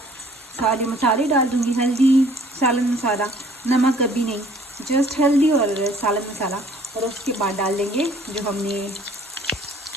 सारे मसाले डाल दूँगी, हल्दी, सालन मसाला, नमक अभी नहीं, जस्ट हल्दी और सालन मसाला। और उसके बाद डाल देंगे जो हमने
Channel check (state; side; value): normal; both; correlation 0.56